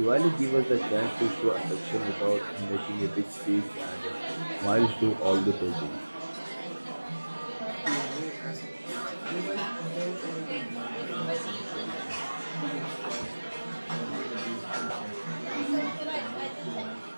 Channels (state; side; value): inverted; both; correlation -1.00